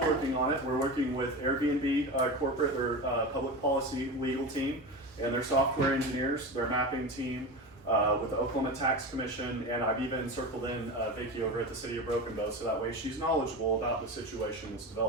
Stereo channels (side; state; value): both; normal; correlation 0.25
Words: on it. We're working with Airbnb corporate, their public policy legal team, and their software engineers, their mapping team, with the Oklahoma Tax Commission, and I've even circled in Vicki over at the City of Broken Bow, so that way she's knowledgeable about the situation that's